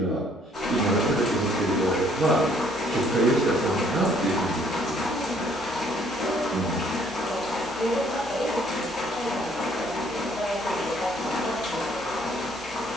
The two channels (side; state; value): both; normal; correlation 0.63